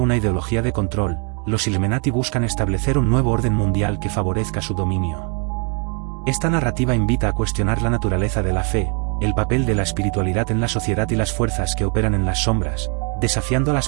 ideología de control, los Illuminati buscan establecer un nuevo orden mundial que favorezca su dominio. Esta narrativa invita a cuestionar la naturaleza de la fe, el papel de la espiritualidad en la sociedad y las fuerzas que operan en las sombras, desafiando a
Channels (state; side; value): quieter; left; 38.9 dB